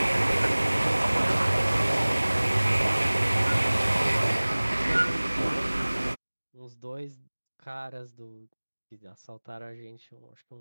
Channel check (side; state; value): both; inverted; correlation -1.00